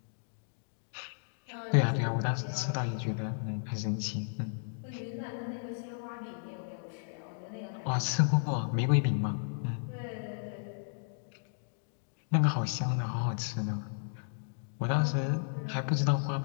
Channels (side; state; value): right; silent; digital silence